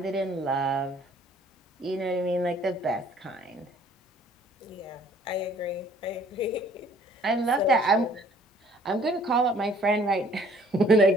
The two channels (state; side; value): normal; both; correlation 0.58